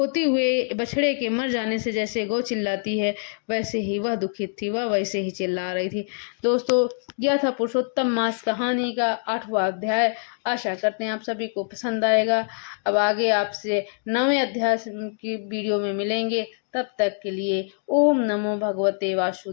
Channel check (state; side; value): silent; right; digital silence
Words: हुए बछड़े के मर जाने से जैसे गौ चिल्लाती है, वैसे ही वह दुखित थी, वह वैसे ही चिल्ला रही थी। दोस्तों, यह था पुरुषोत्तम मास कहानी का 8वां अध्याय। आशा करते हैं आप सभी को पसंद आएगा। अब आगे आपसे 9वें अध्याय की वीडियो में मिलेंगे। तब तक के लिए ओम नमो भगवते